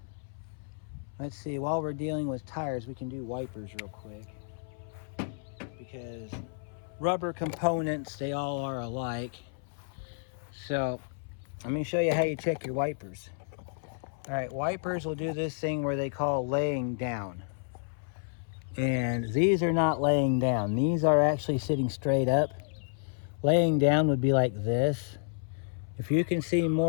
see, while we're dealing with tires, we can do wipers real quick, because rubber components, they all are alike. So let me show you how you check your wipers. All right, wipers will do this thing where they call laying down. And these are not laying down. These are actually sitting straight up. Laying down would be like this. If you can see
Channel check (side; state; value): right; silent; 57 dB below the other